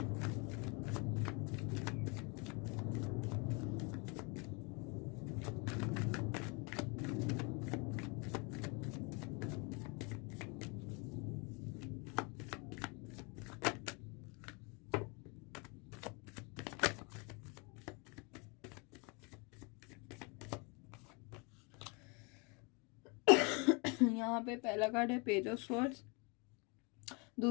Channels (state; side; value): quieter; right; 31.4 dB